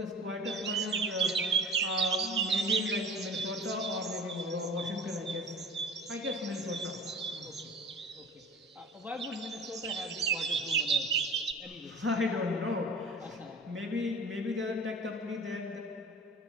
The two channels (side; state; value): both; normal; correlation 0.40